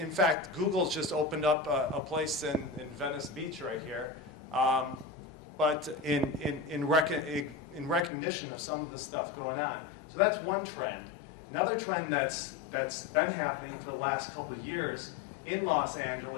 fact, Google's just opened up a place in Venice Beach right here, but in recognition of some of the stuff going on. So that's one trend. Another trend that's been happening for the last couple of years in Los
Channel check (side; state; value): right; drops out; at 8.1 s